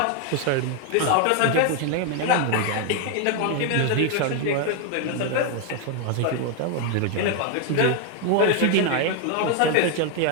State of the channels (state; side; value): different; both; correlation 0.01